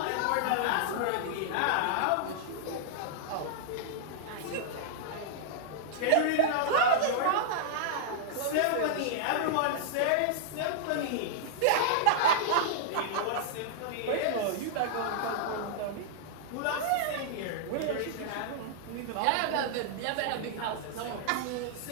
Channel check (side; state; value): both; different; correlation -0.01